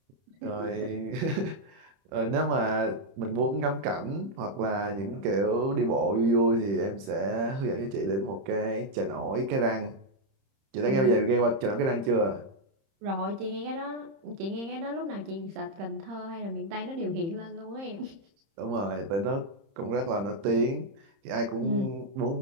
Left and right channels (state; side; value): late; left; 30 ms